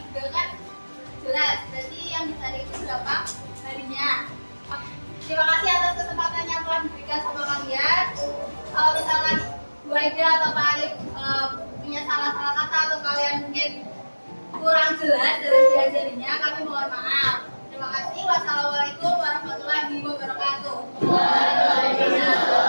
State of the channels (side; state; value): both; inverted; correlation -1.00